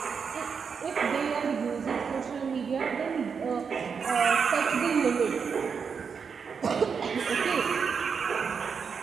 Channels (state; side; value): quieter; left; 6.1 dB